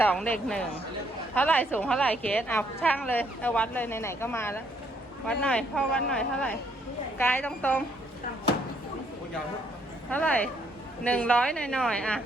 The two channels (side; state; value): both; normal; correlation 0.69